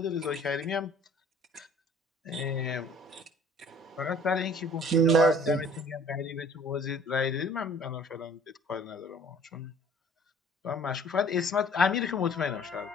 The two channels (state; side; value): normal; both; correlation 0.52